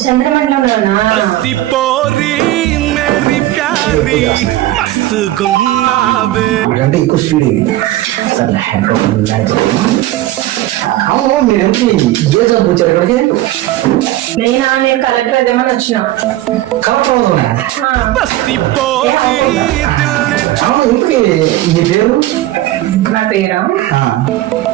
చంద్రమండలోనా? అంటే ఎక్కువ స్పీడ్ ఇది. సరే అవును, మీరు ఎంపీ ఏ జాబ్ వచ్చారు ఇక్కడికి? నేను కలెక్టర్ అదేమని వచ్చిన. కలెక్టర్ అవుతున్నా. అవును, ఇంటికి మీ పేరు? నా పేరా?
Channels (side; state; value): left; quieter; 15.5 dB